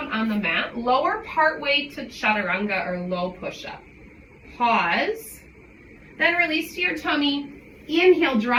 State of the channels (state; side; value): identical; both; correlation 1.00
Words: on the mat, lower partway to chaturanga or low push-up. Pause, then release to your tummy. Inhale,